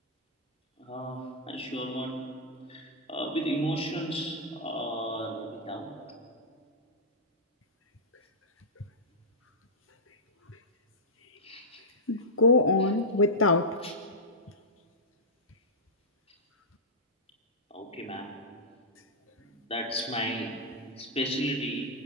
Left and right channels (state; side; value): normal; both; correlation -0.10